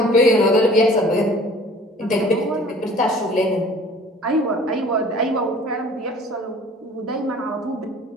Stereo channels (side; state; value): both; normal; correlation 0.49